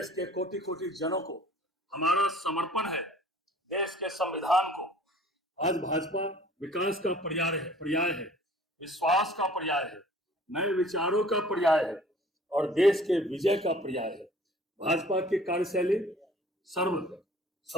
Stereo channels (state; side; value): normal; both; correlation 0.51